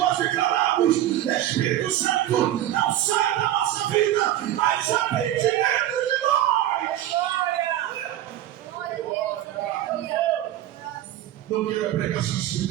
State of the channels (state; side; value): quieter; left; 12.8 dB